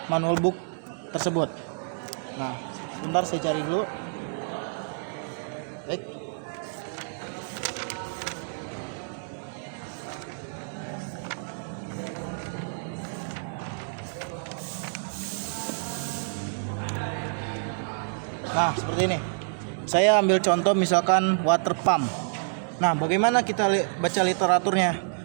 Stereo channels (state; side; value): silent; left; digital silence